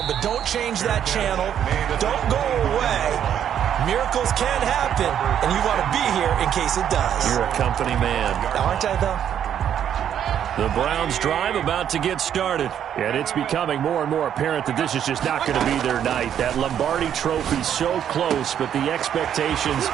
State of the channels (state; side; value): quieter; left; 9.5 dB